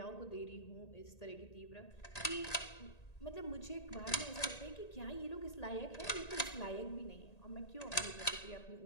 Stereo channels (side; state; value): right; late; 1.8 ms